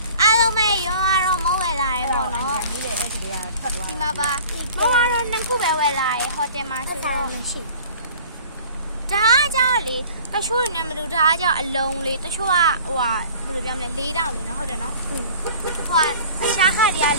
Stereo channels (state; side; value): inverted; both; correlation -0.46